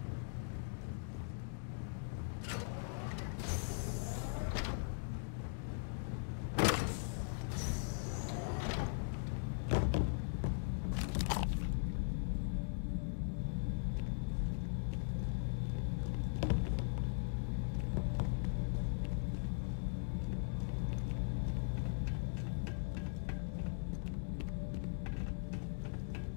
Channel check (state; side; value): silent; right; digital silence